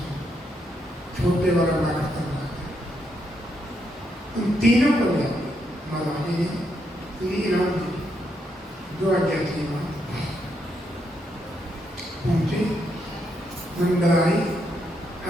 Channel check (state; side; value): normal; both; correlation 0.78